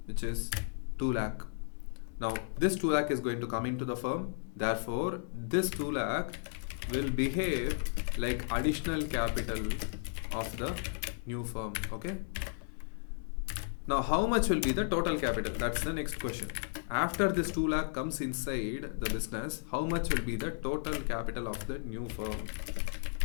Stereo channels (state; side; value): silent; right; digital silence